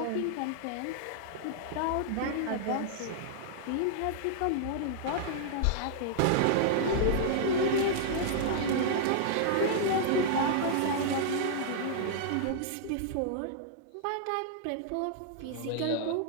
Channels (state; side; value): different; both; correlation -0.01